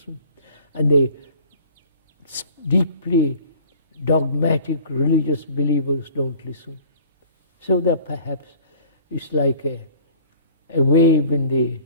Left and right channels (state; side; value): inverted; both; correlation -0.48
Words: and the deeply dogmatic religious believers don't listen. So that perhaps it's like a wave in the